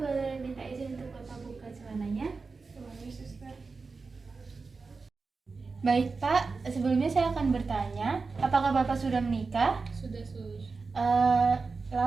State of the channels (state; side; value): quieter; left; 4.4 dB